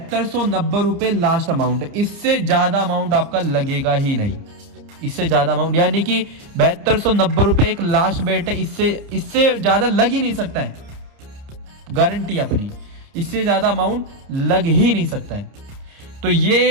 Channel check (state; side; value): late; left; 30 ms